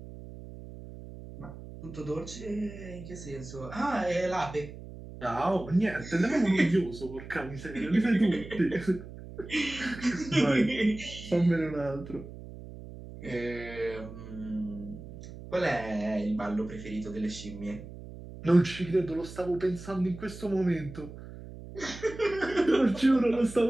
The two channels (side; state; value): right; noise; hum, 13 dB below the sound